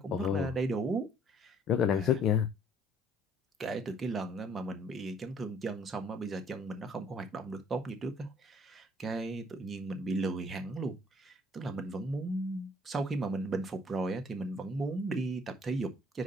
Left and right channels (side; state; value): both; normal; correlation 0.59